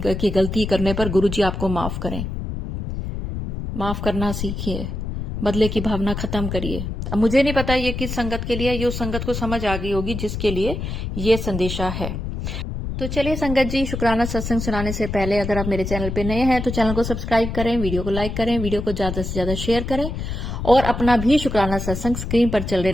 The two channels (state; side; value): noise; left; rumble, 5 dB below the sound